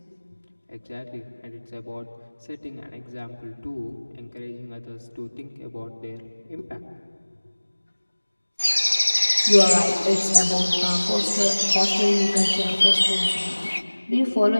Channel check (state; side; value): inverted; both; correlation -1.00